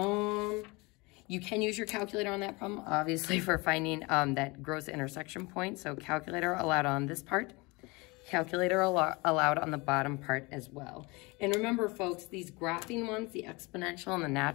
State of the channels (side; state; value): right; quieter; 25.5 dB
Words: can use your calculator on that problem, obviously, for finding that gross intersection point. So calculator allowed on this part. Calculator allowed on the bottom part as well. And remember, folks, these graphing ones, the exponential and the